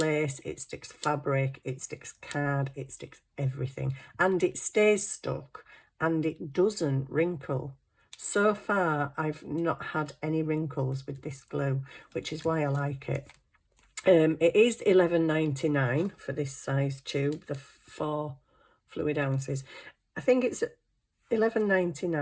it sticks fabric, it sticks card, it sticks everything, and it stays stuck and it doesn't wrinkle. So far I've not had any wrinkles with this glue, which is why I like it. It is £11.99 for this size tube, the 4 fluid ounces. I think it's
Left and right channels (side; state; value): both; identical; correlation 1.00